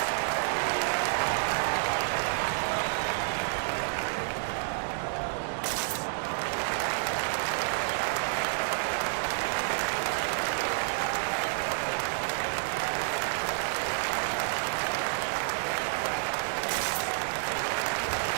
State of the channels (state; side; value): silent; left; 58 dB below the other